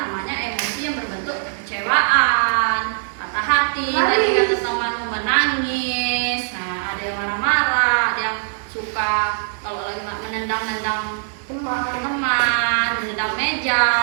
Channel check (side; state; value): left; silent; digital silence